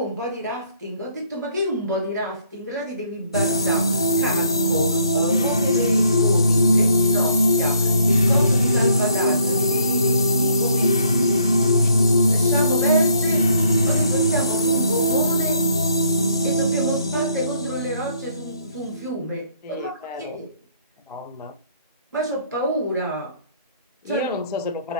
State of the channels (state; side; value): inverted; both; correlation -0.67